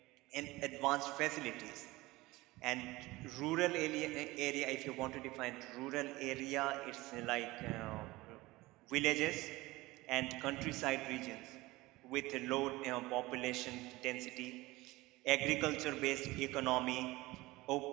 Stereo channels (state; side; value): quieter; left; 20.1 dB